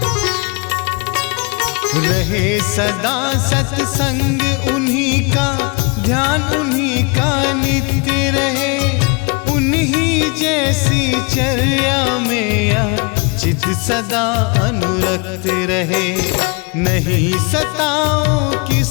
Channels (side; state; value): right; quieter; 30.5 dB